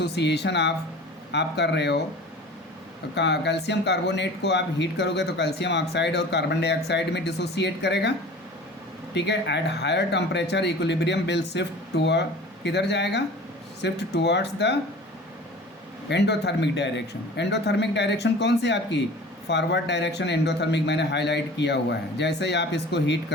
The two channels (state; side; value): normal; both; correlation 0.41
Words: आप कर रहे हो, कैल्शियम कार्बोनेट को आप हीट करोगे तो कैल्शियम ऑक्साइड और कार्बन डाइऑक्साइड में डिसोसिएट करेगा, ठीक है। At higher temperature equilibrium will shift toward, किधर जाएगा? Shift towards the endothermic direction. Endothermic direction कौन सी आपकी? फॉरवर्ड डायरेक्शन एंडोथर्मिक मैंने हाईलाइट किया हुआ है। जैसे ही आप इसको हीट